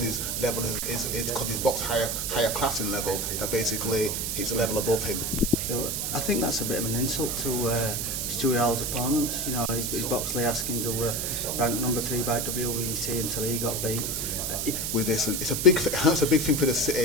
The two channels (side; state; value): right; noise; hiss, 1 dB below the sound